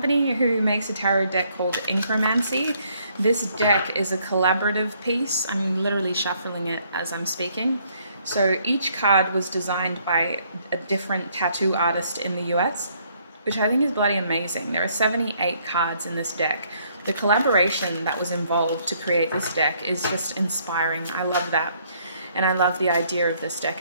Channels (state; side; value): inverted; both; correlation -0.67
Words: who makes a tarot deck called Inkromancy. This deck is a collaborative piece. I'm literally shuffling it as I'm speaking. So each card was designed by a different tattoo artist in the US, which I think is bloody amazing. There are 78 cards in this deck. The collaboration that was involved to create this deck is just inspiring. I love that. And I love the idea of this deck